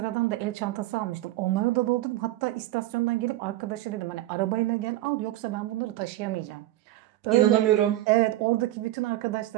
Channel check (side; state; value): left; quieter; 15.7 dB